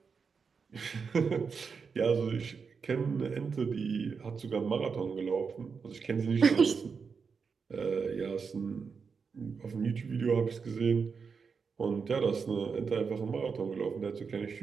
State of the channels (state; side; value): quieter; left; 5.6 dB